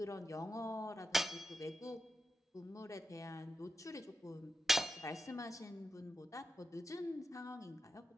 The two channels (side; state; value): both; normal; correlation 0.89